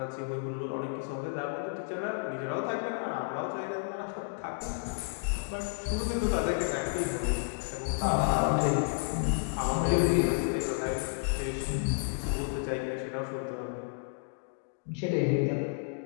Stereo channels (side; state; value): right; silent; digital silence